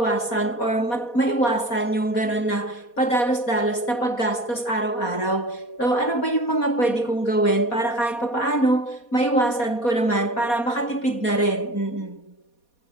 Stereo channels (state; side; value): late; right; 4.2 ms